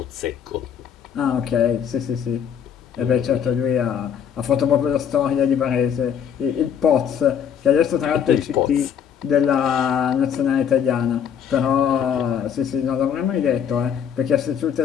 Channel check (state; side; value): quieter; right; 8.2 dB